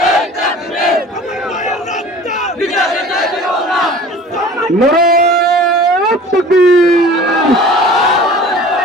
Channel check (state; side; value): normal; both; correlation 0.44